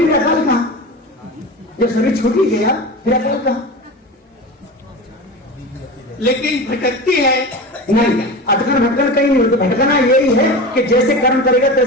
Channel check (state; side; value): normal; both; correlation 0.29